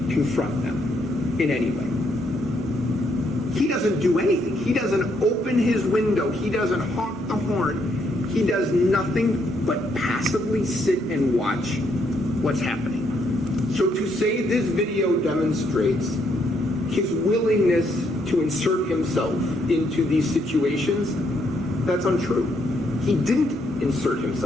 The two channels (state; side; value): normal; both; correlation 0.73